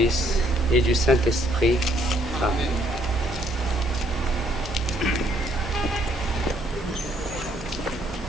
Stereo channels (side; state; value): both; normal; correlation 0.68